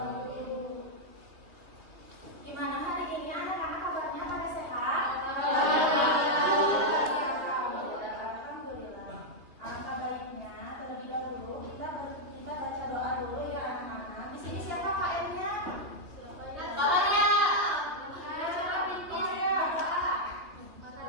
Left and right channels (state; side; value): late; left; 3.0 ms